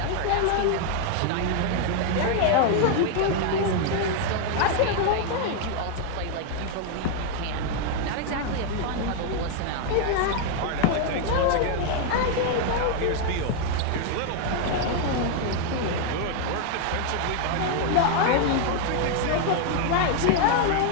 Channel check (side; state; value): both; different; correlation 0.00